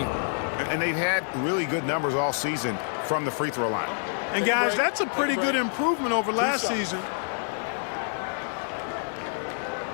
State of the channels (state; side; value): silent; right; 60 dB below the other